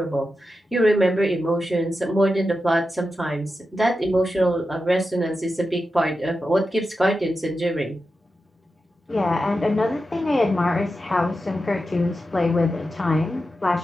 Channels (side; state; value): both; normal; correlation 0.90